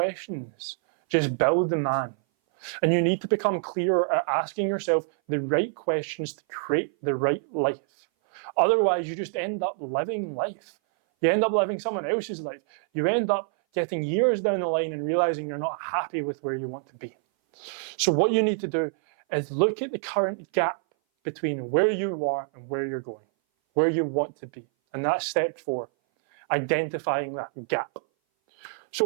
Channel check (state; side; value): silent; left; 58 dB below the other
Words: Just build the man. And you need to become clearer at asking yourself the right questions to create the right life. Otherwise, you just end up living life. You end up living someone else's life. You end up getting years down the line and realizing you're not happy with where you want to be. So what you need to do is look at the current gap between where you are and where you're going, where you want to be. And that's step 4, identifying that gap.